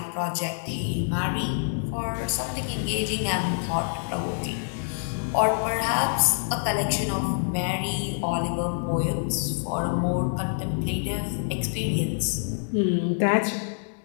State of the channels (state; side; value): silent; right; 61 dB below the other